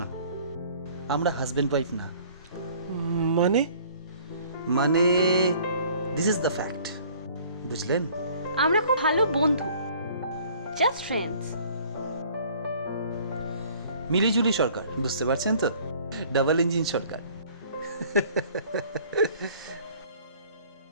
না। আমরা হাজবেন্ড ওয়াইফ না। মানে মানে দিস ইজ দ্য ফ্যাক্ট, বুঝলেন? আমরা খুব ভালো বন্ধু, জাস্ট ফ্রেন্ডস। মিলিজুলি সরকার, বুঝতে পারছেন তো? ডাবল ইঞ্জিন সরকার।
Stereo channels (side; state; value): both; inverted; correlation -0.54